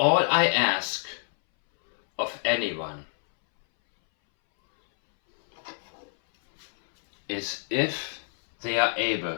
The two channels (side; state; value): right; silent; 61 dB below the other